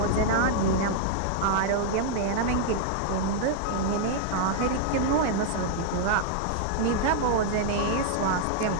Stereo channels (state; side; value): different; both; correlation -0.01